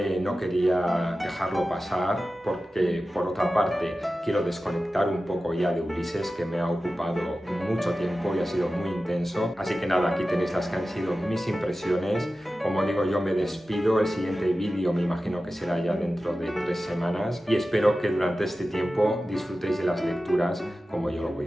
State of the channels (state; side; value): normal; both; correlation 0.94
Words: no quería dejarlo pasar porque por otra parte quiero desconectar un poco ya de Ulises, que me ha ocupado mucho tiempo y ha sido muy intenso. Así que nada, aquí tenéis las que han sido mis impresiones. Como digo, yo me despido, el siguiente vídeo me imagino que será ya dentro de 3 semanas y espero que durante este tiempo disfrutéis de las lecturas como yo lo